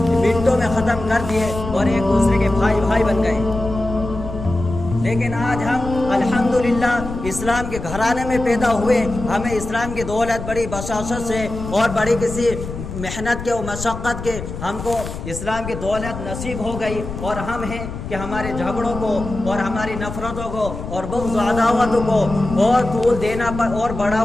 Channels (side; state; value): left; noise; rumble, 8 dB below the sound